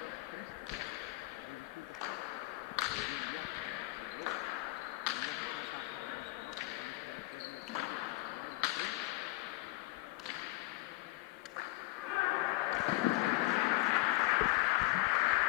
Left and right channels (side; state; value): right; quieter; 20.8 dB